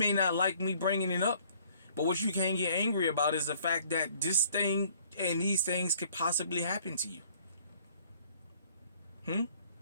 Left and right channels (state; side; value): inverted; both; correlation -0.58